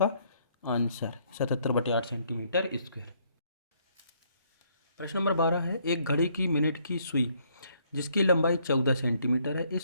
आंसर 77/8 सेंटीमीटर स्क्वायर। प्रश्न नंबर 12 है, एक घड़ी की मिनट की सुई जिसकी लंबाई 14 सेंटीमीटर है,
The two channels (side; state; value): both; inverted; correlation -0.68